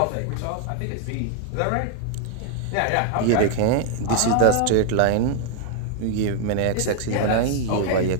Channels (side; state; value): both; different; correlation 0.00